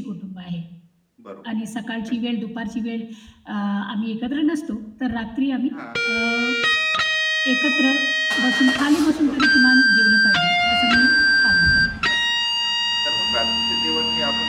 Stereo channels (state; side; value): identical; both; correlation 1.00